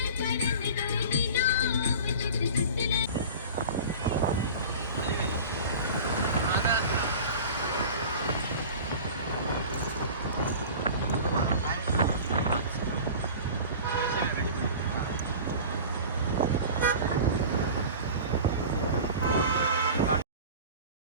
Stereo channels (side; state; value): both; inverted; correlation -0.37